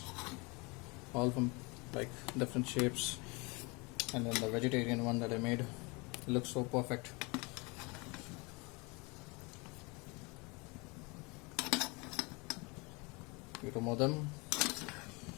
all from like different shapes. And then the vegetarian one that I made looks so perfect. You remove them,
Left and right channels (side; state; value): right; quieter; 28.0 dB